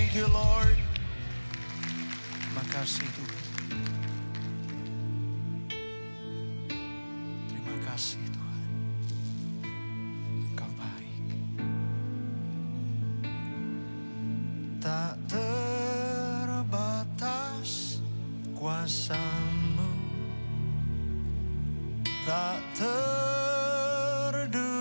Thank you, Lord. Terima kasih Tuhan. Terima kasih Tuhan. Kau baik. Tak terbatas kuasa-Mu, tak terduga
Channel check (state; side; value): inverted; both; correlation -1.00